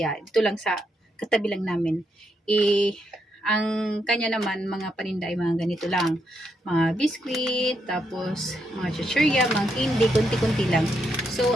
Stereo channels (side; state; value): both; normal; correlation 0.80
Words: dito lang sa katabi lang namin. Ang kanya naman, mga paninda ay mga ganito lang. Mga biscuit, tapos mga chichirya, mga candy, kunti-kunti lang. So